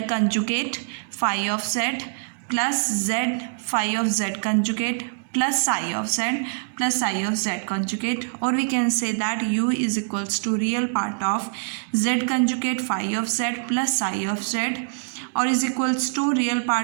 conjugate phi of z plus z phi of z conjugate plus psi of z conjugate, or we can say that u is equals to real part of z conjugate phi of z plus psi of z, or is equals to real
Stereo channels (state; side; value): silent; left; 62 dB below the other